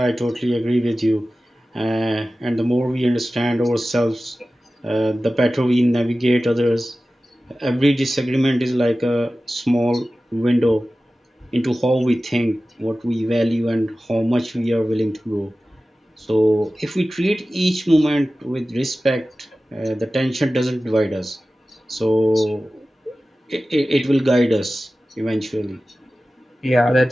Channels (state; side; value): normal; both; correlation 0.96